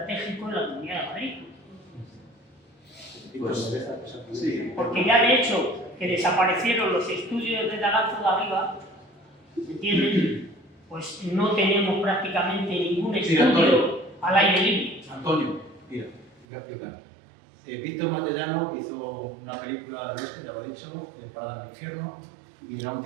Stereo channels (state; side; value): drops out; left; at 16.4 s